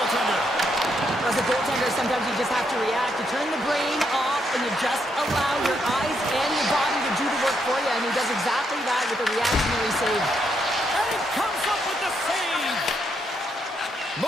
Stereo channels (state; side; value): normal; both; correlation 0.77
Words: As a goaltender, sometimes you just have to react. You turn the brain off and you just allow your eyes and your body to do the work for you. And he does exactly that with a reactionary save. And he comes up with the save.